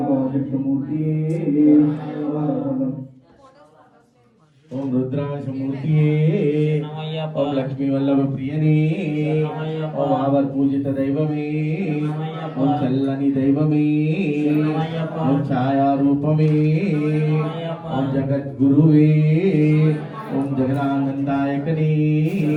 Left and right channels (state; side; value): identical; both; correlation 1.00